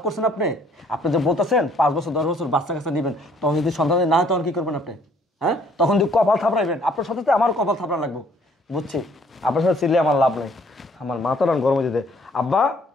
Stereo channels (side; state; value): both; normal; correlation 0.62